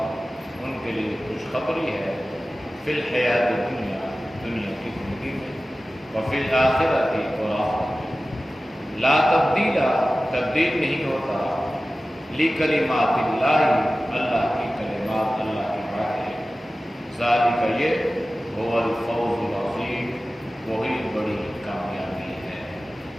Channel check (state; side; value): normal; both; correlation 0.96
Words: ان کے لیے خوشخبری ہے، فی الحیات دنیا دنیا کی زندگی میں، وفی الآخرۃ اور آخرت میں، لا تبدیل تبدیل نہیں ہوتا، لکلمات اللہ اللہ کی کلمات اللہ کی باتیں، ذالک یہ هو الفوز العظیم وہی بڑی کامیابی ہے۔